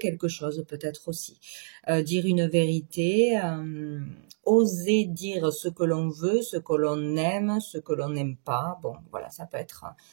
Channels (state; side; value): silent; left; digital silence